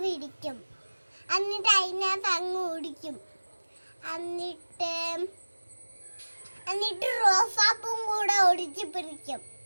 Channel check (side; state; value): both; inverted; correlation -1.00